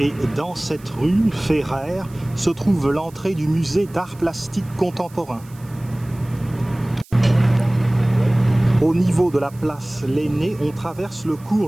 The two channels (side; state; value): right; noise; hiss, 25 dB below the sound